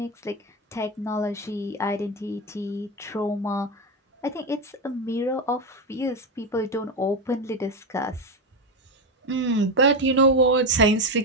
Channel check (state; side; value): normal; both; correlation 0.12